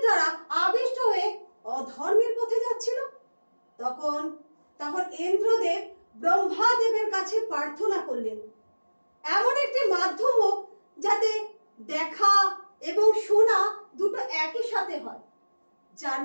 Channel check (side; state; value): both; inverted; correlation -1.00